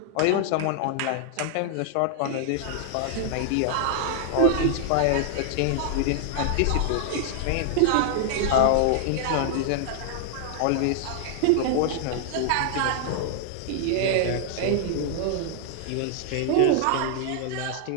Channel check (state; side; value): different; both; correlation -0.01